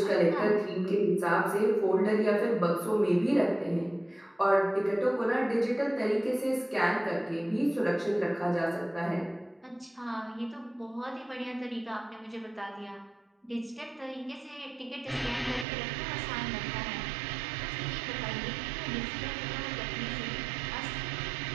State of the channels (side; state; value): left; drops out; at 15.7 s